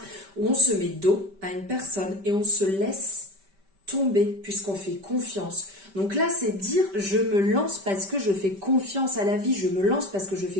où on se met dos à une personne et on se laisse tomber puisqu'on fait confiance. Donc là, c'est dire je me lance parce que je fais confiance à la vie, je me lance parce que je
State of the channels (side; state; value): left; late; 5.1 ms